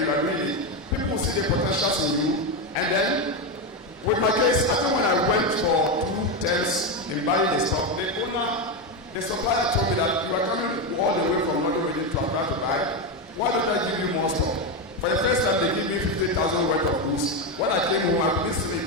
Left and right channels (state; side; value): normal; both; correlation 0.10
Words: you are doing it, people will see the potentials in you. And then, with my case, I think when I went for 2 terms in buying the stock, the supplier told me that you are coming all the way from London Reading to Accra to buy. Why don't I give you more stock? For the first time, they gave me 50,000 worth of goods. When I came home, I couldn't sleep